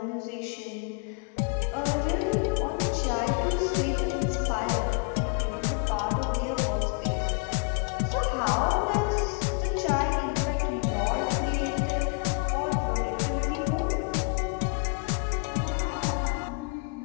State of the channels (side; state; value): right; quieter; 36.5 dB